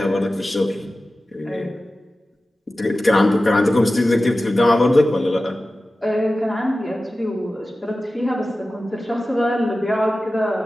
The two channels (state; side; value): normal; both; correlation 0.95